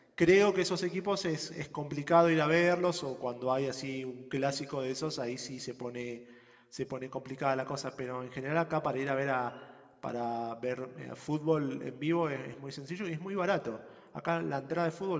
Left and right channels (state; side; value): identical; both; correlation 1.00